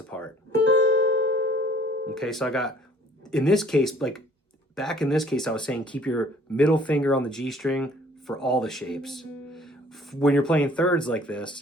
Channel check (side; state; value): both; normal; correlation 0.56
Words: Okay, so I got, in this case, like back in this case, I was saying keep your middle finger on the G string for all the shapes. When you're playing thirds like